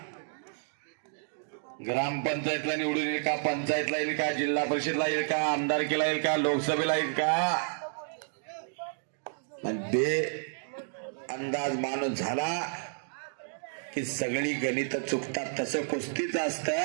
ग्रामपंचायतला निवडून येईल का, पंचायतला येईल का, जिल्हा परिषदला येईल का, आमदारकीला येईल का, लोकसभेला येईल का, ते अंदाज माणूस झाला की सगळी गणित चुकतात। तसं कुस्तीच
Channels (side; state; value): left; silent; digital silence